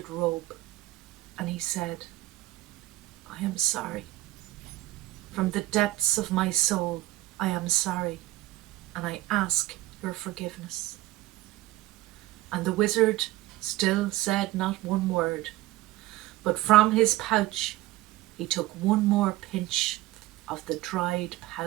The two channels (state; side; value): quieter; left; 17.0 dB